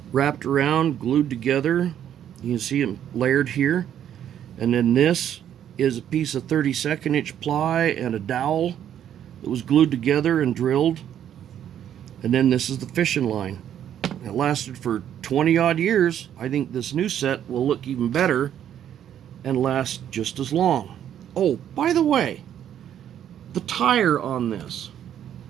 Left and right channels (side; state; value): left; quieter; 10.1 dB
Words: wrapped around, glued together. You can see them layered here. And then this is a piece of 32nd inch ply and a dowel that was glued together and drilled. And then this is the fishing line. It lasted for 20 odd years. I think this new set will look even better and last just as long. Oh, by the way, the tire on this,